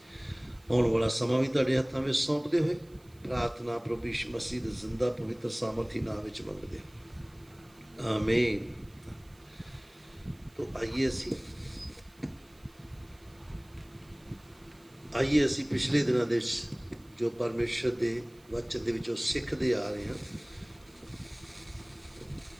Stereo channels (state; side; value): noise; right; hiss, 29 dB below the sound